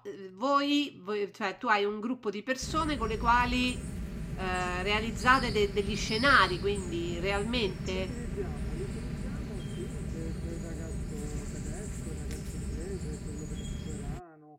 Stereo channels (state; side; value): identical; both; correlation 1.00